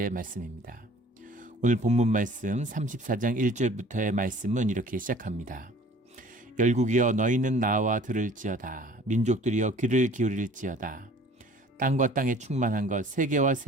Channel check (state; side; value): normal; both; correlation 0.50